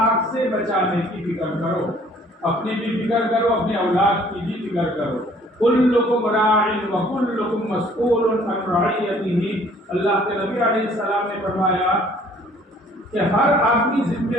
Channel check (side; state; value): both; normal; correlation 0.57